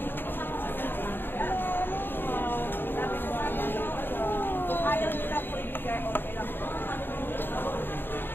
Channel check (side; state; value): right; late; 0.099 ms